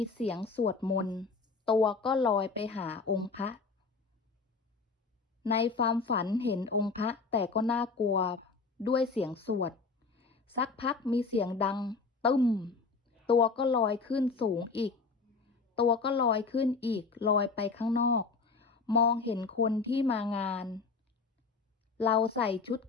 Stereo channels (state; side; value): quieter; right; 4.5 dB